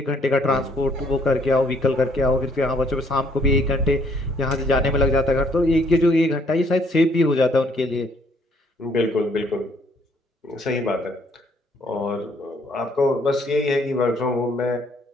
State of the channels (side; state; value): both; normal; correlation 0.65